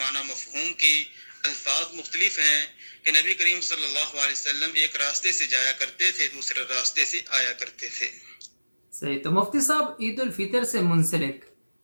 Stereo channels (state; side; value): inverted; both; correlation -1.00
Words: مفہوم کی الفاظ مختلف ہیں کہ نبی کریم صلی اللہ علیہ وسلم ایک راستے سے جایا کرتے تھے، دوسرے راستے سے آیا کرتے تھے۔ صحیح۔ تو مفتی صاحب، عید الفطر سے منسلک